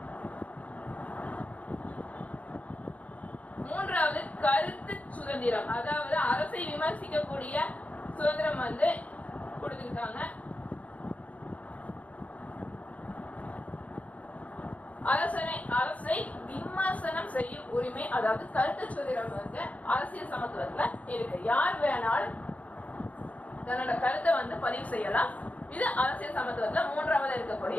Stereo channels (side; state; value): right; late; 0.069 ms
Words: மூன்றாவது கருத்து சுதந்திரம். அதாவது அரசை விமர்சிக்கக்கூடிய சுதந்திரம் வந்து கொடுத்திருக்காங்க. அரசை விமர்சனம் செய்யும் உரிமை, அதாவது கருத்து சுதந்திரம் வந்து அரசியல் சமத்துவத்துல இருக்கு. யார் வேணாலும் தன்னோட கருத்தை வந்து பதிவு செய்யலாம். இது அரசியல் சமத்துவத்துல 3வது